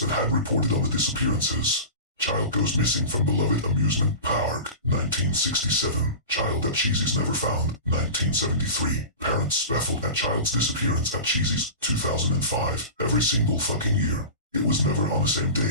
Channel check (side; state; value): both; inverted; correlation -0.32